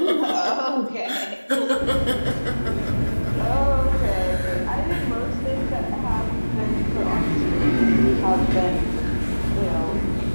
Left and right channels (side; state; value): both; inverted; correlation -1.00